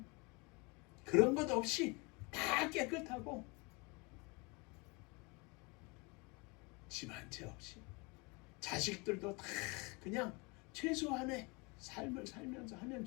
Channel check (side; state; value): right; quieter; 28.5 dB